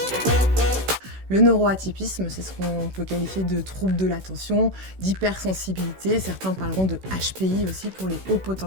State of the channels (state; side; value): late; left; 16 ms